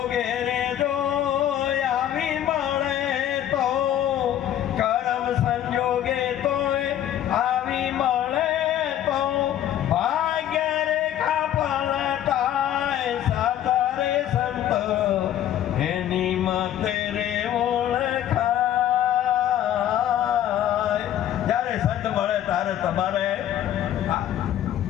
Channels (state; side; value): quieter; right; 11.3 dB